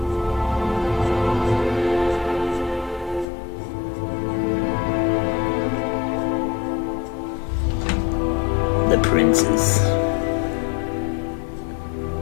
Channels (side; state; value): right; drops out; at 3.2 s